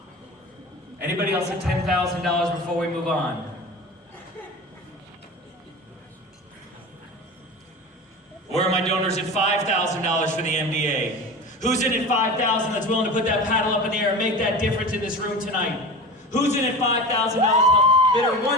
Anybody else at $10,000 before we move on? Where are my donors at $5,000 for the MDA? Who's in at $5,000 that's willing to put that paddle up in the air and make that difference in this room tonight? Who's in at $5,000? Bidder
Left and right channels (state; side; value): normal; both; correlation 0.32